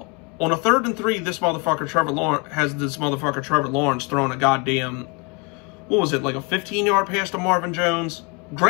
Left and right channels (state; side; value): quieter; right; 29.4 dB